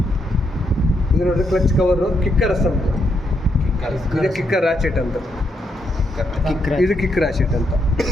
ಇದು ನೋಡ್ರಿ ಕ್ಲಚ್ ಕವರು, ಕಿಕ್ಕರ್ ಅಸೆಂಬ್ಲಿ. ಇದು ಕಿಕ್ಕರ್ ರಾಚೆಟ್ ಅಂತ. ಇದು ಕಿಕ್ ರಾಶೆಟ್ ಅಂತ.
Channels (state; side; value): normal; both; correlation 0.79